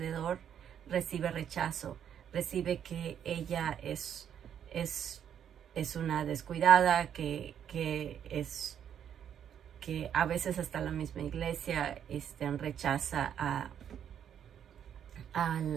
recibe rechazo, recibe que ella es una descuidada, que a veces hasta la misma iglesia rechaza a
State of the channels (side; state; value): left; quieter; 9.1 dB